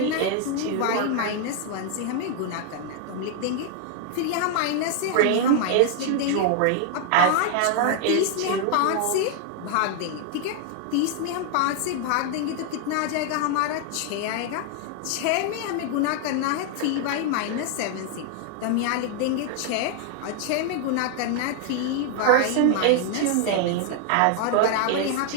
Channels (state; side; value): different; both; correlation 0.00